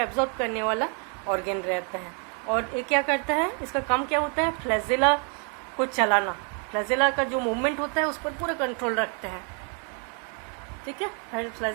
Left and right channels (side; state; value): left; quieter; 38.7 dB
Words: करने वाला ऑर्गेन रहता है। और ये क्या करता है, इसका काम क्या होता है, फ्लैजिला को चलाना। फ्लैजिला का जो मूवमेंट होता है उस पर पूरा कंट्रोल रखते हैं, ठीक है। हर